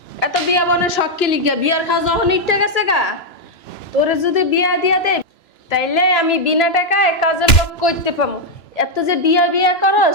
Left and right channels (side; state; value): right; late; 2.9 ms